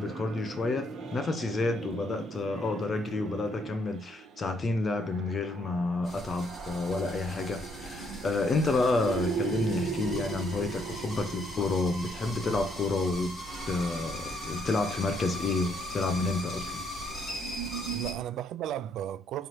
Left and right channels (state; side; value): normal; both; correlation 0.71